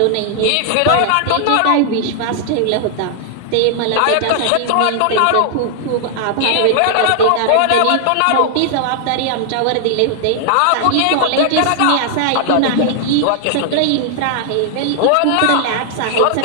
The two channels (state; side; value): different; both; correlation 0.00